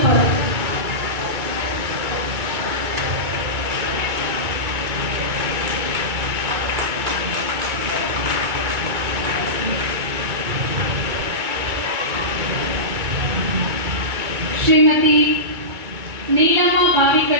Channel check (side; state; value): left; late; 2.2 ms